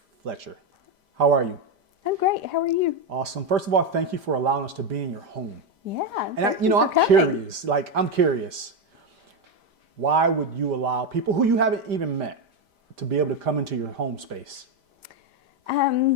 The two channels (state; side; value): late; left; 5.0 ms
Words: How are you? I'm great. How are you? Awesome. First of all, thank you for allowing us to be in your home. Yeah. And I'm curious. I'm curious. Why would you allow people who you haven't even met to be able to come into your home space?